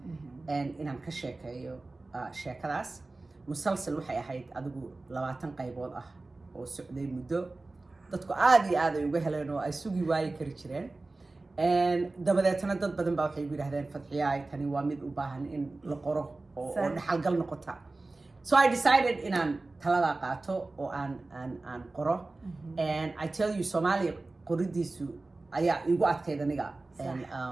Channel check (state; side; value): quieter; left; 3.2 dB